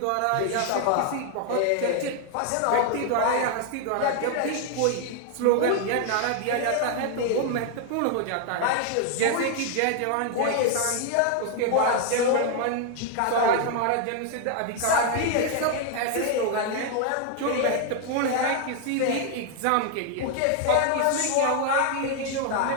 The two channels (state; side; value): different; both; correlation 0.00